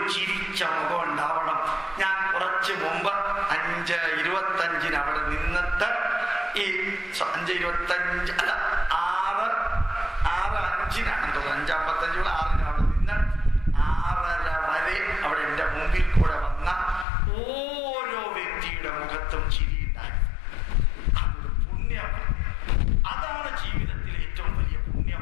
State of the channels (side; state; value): right; drops out; at 17.1 s